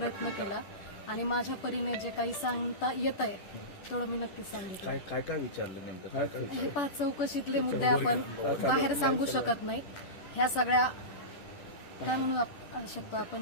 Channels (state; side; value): late; right; 10 ms